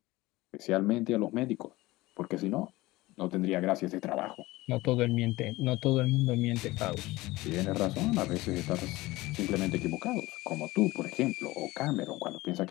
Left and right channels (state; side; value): quieter; right; 19.5 dB